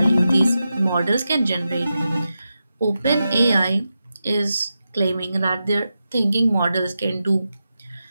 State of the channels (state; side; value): inverted; both; correlation -0.90